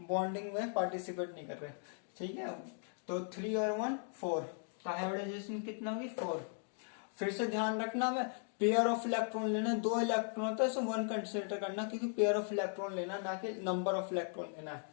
बॉन्डिंग में पार्टिसिपेट नहीं कर रहे। ठीक है, तो 3 और 1, 4। तो हाइब्रिडाइजेशन कितना होगी, 4। फिर से ध्यान रखना, मैं पेयर ऑफ इलेक्ट्रॉन लेना, 2 इलेक्ट्रॉन होता है, सो 1 कंसिडर करना, क्योंकि पेयर ऑफ इलेक्ट्रॉन लेना, ना कि नंबर ऑफ इलेक्ट्रॉन लेना है।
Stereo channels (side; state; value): right; silent; 53 dB below the other